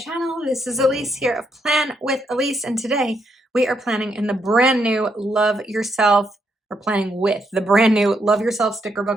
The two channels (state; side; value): normal; both; correlation 0.77